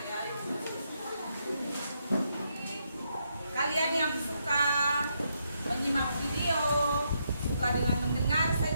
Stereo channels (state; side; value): inverted; both; correlation -0.78